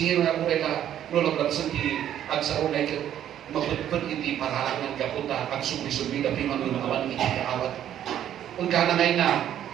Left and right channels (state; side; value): quieter; left; 10.8 dB